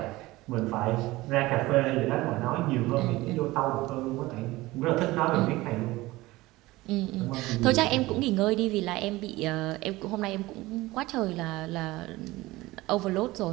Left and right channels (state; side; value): quieter; left; 19.4 dB